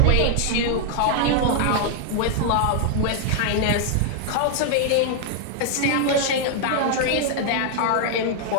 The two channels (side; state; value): both; different; correlation 0.00